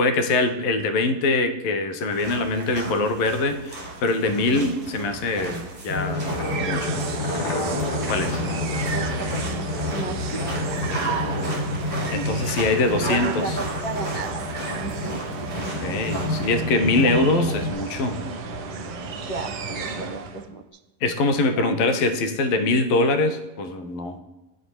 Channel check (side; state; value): right; late; 11 ms